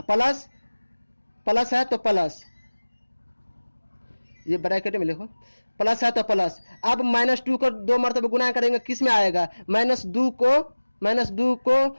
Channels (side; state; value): both; inverted; correlation -1.00